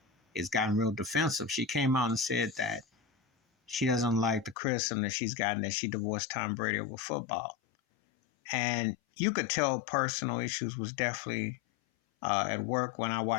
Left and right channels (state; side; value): drops out; right; at 4.5 s